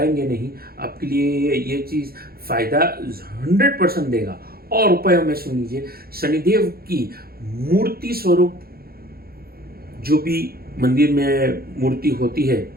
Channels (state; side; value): late; left; 0.44 ms